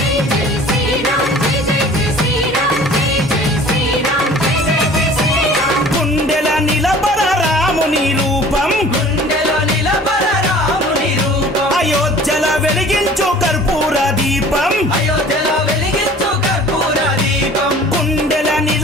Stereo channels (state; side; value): normal; both; correlation 0.47